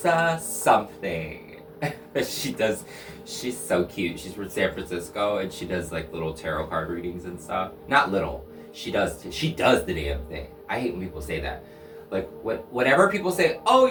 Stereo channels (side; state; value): both; identical; correlation 1.00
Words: something. She's so cute. She's from San Francisco, and she does like little tarot card readings and stuff. Not little. She does the damn thing. I hate when people say that. Like, whenever people say, oh,